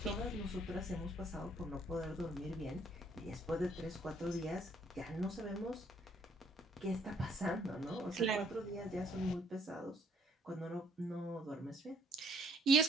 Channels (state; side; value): normal; both; correlation 0.65